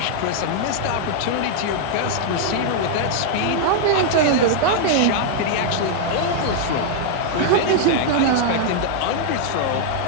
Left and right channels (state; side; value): different; both; correlation -0.01